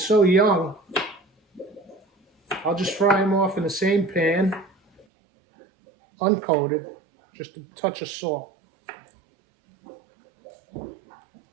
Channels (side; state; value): left; drops out; at 5.1 s